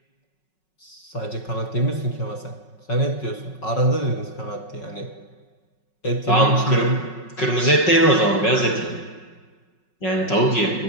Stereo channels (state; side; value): late; right; 5.4 ms